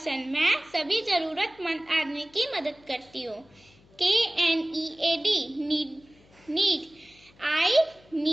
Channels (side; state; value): left; noise; hum, 28 dB below the sound